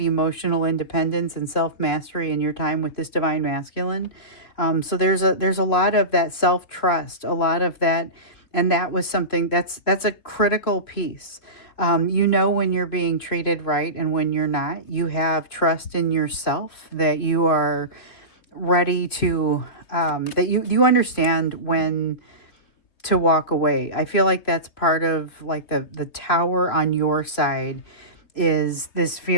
independence and self-mastery in your time with this divine masculine. So there's a lot of that self-trust, a lot of that, and that was something that's a critical piece. You know when you're being treated right and when you're not. You have trust in yourself that you are ready to, that you understand when to walk away. I feel like that's part of like the tower on your side is this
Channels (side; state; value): right; late; 3.5 ms